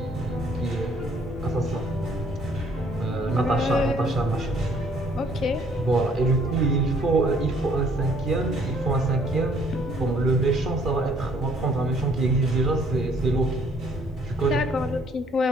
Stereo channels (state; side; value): normal; both; correlation 0.62